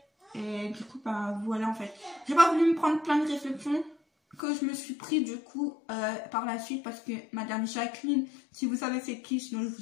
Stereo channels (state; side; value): drops out; right; at 4.4 s